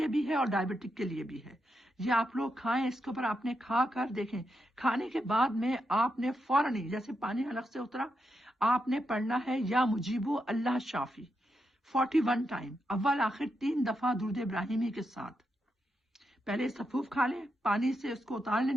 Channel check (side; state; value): both; normal; correlation 0.84